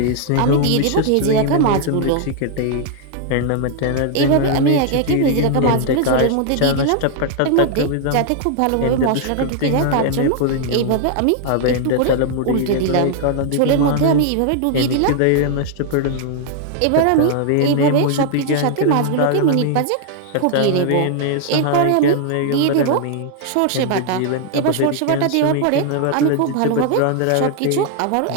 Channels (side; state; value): both; different; correlation 0.00